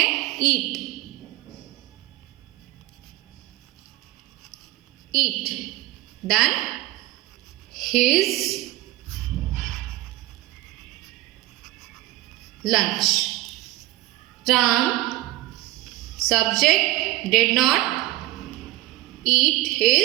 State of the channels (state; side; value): quieter; left; 17.3 dB